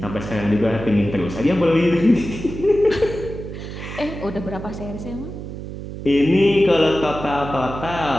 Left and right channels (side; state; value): right; noise; hum, 9 dB below the sound